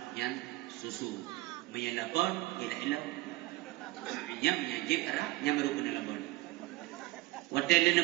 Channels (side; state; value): left; quieter; 19.1 dB